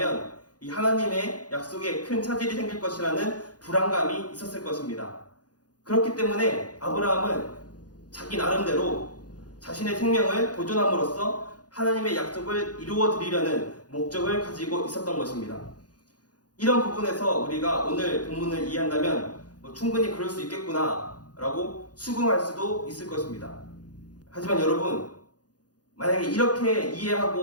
이 하나님의 약속에 큰 차질이 생길 것이라는 불안감이 있었을 것입니다. 그렇기 때문에 아브라함은 자기 나름대로 자신의 생명을 보존함으로써 하나님의 약속을 이루어 드리려는 목적을 가지고 있었던 것입니다. 이런 부분에서 우리가 오늘 본문을 이해한다면 충분히 그럴 수 있겠구나 라고 수긍할 수도 있을 것입니다. 하지만 여러분, 만약에 이렇게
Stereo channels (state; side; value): late; right; 0.69 ms